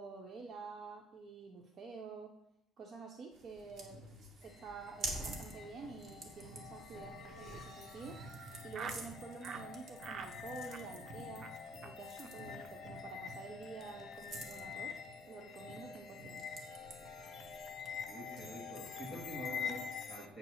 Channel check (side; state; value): both; normal; correlation 0.61